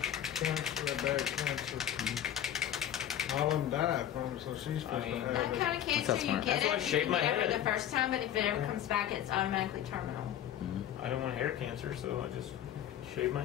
cancer, bad cancer. All of them died from it, so she's supposed mean, to have that it. kind of That's cancer. You smart. get That's why I it, shaved you my get it head. the first time, but if it ever comes back, it's automatically terminal. I don't want hair cancer, so I just shave my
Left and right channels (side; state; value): right; quieter; 10.9 dB